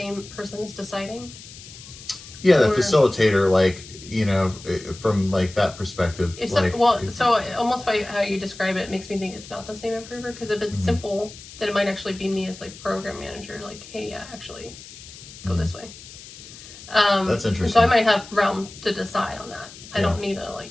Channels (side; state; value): left; noise; hiss, 17 dB below the sound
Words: person is deciding? Yeah, the facilitator, like, from like that perspective. So almost by how you describe it makes me think it's not the same improver, because if it's simple, then it might actually be me as like program manager, like, hey, yeah, actually go this way. That's interesting. So I might have realm to decide on that. I don't need to